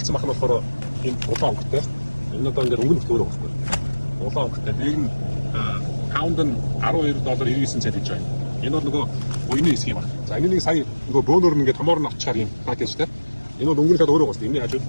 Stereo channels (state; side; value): inverted; both; correlation -1.00